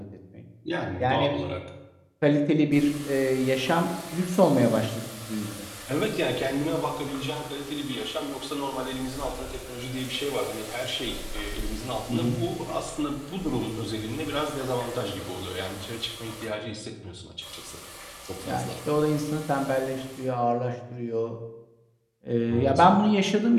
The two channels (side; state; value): both; identical; correlation 1.00